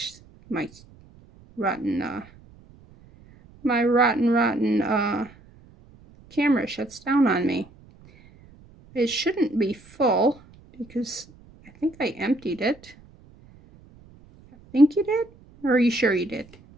my rotten camera shuts down on me. It shouldn't be full because I think I emptied it. I think you did? Or are you sure you did?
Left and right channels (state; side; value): noise; right; rumble, 25 dB below the sound